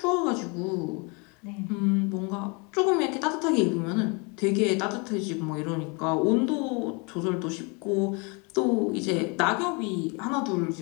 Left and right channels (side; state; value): right; quieter; 31.5 dB